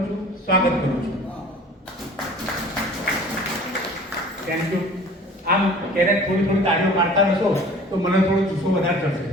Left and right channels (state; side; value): normal; both; correlation 0.46